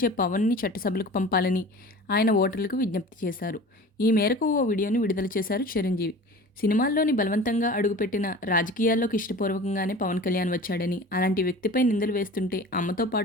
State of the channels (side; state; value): both; normal; correlation 0.39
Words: పవన్‌ని చట్టసభలకు పంపాలని ఆయన ఓటర్లకు విజ్ఞప్తి చేశారు. ఈ మేరకు ఓ వీడియోని విడుదల చేశారు చిరంజీవి. సినిమాల్లోని బలవంతంగా అడుగుపెట్టిన రాజకీయాల్లోకి ఇష్టపూర్వకంగానే పవన్ కళ్యాణ్ వచ్చాడని, అలాంటి వ్యక్తిపై నిందలు వేస్తుంటే అమ్మతో